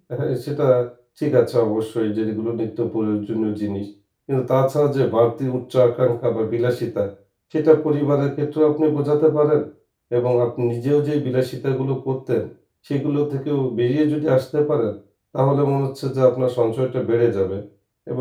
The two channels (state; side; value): identical; both; correlation 1.00